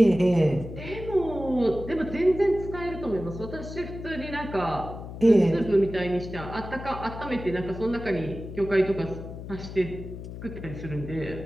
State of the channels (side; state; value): left; noise; hum, 10 dB below the sound